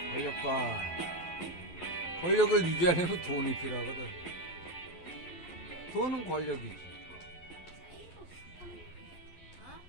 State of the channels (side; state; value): right; late; 12 ms